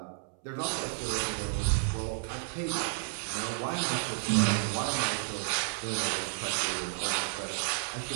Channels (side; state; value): left; silent; 57 dB below the other